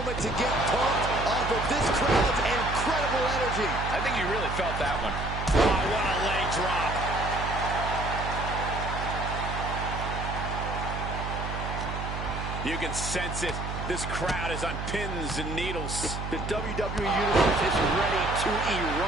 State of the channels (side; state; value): right; noise; hum, 5 dB below the sound